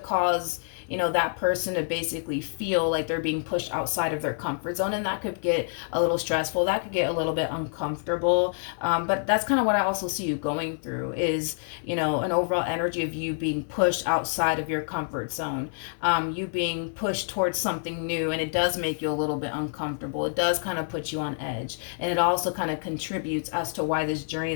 cause, you know, that person to basically feel like they're being pushed outside of their comfort zone, and that could get a little stressful, that could get a little bit uncomfortable. But that's kind of what I also see you going through is, you know, an overall energy of you being pushed outside of your comfort zone, you being pushed towards something new, and it does make you a little bit uncomfortable. It does kind of put you on edge, and it also kind of contributes as to why this journey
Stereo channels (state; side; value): silent; right; 56 dB below the other